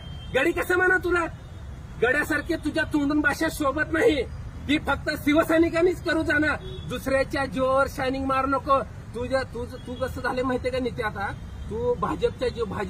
गडी कसं म्हणा तुला? गड्यासारखे तुझ्या तोंडून भाषा शोभत नाही. ती फक्त शिवसैनिकांनीच करू जाणार. दुसऱ्याच्या जोर शायनिंग मारू नको. तू कसं झाले माहितीये का नित्य? आता तू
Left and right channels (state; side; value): identical; both; correlation 1.00